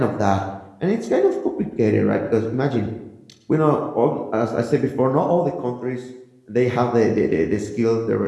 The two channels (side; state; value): both; identical; correlation 1.00